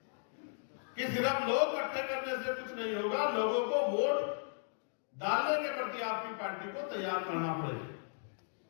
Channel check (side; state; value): right; silent; digital silence